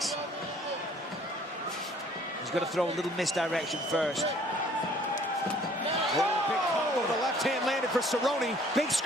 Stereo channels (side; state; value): both; normal; correlation 0.57